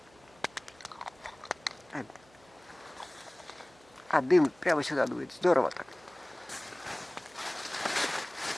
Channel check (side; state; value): right; noise; hum, 28 dB below the sound